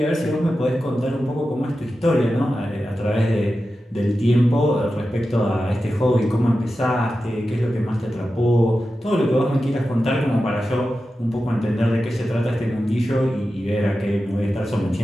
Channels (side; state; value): both; normal; correlation 0.92